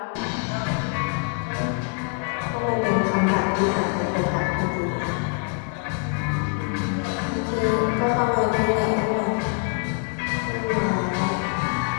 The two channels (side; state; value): right; quieter; 38.5 dB